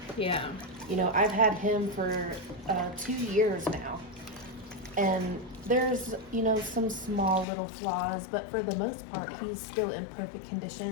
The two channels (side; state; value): right; drops out; at 7.5 s